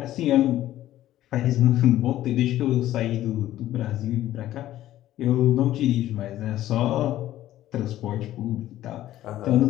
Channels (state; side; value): quieter; right; 13.7 dB